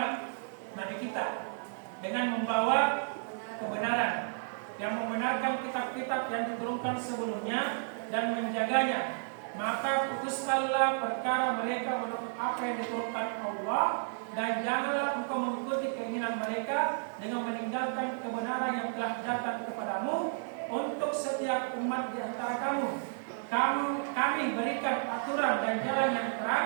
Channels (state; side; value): silent; left; digital silence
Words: Nabi kita, dengan membawa kebenaran, yang membenarkan kitab-kitab yang diturunkan sebelumnya dan menjaganya. Maka putuskanlah perkara mereka menurut apa yang diturunkan Allah, dan janganlah engkau mengikuti keinginan mereka dengan meninggalkan kebenaran yang telah datang kepadamu untuk setiap umat di antara kamu. Kami berikan aturan dan jalan yang